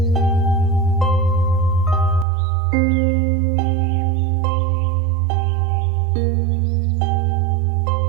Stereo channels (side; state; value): left; drops out; at 2.2 s